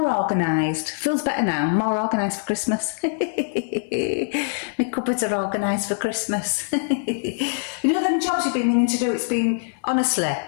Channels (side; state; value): right; silent; 58 dB below the other